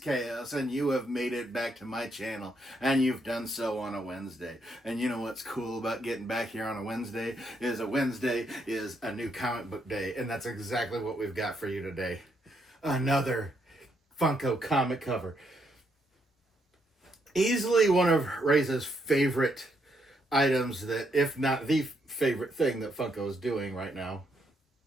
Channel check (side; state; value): both; normal; correlation 0.76